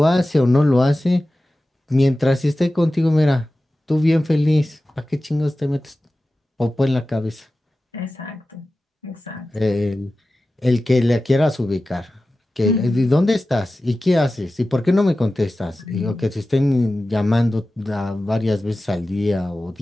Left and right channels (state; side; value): normal; both; correlation 0.95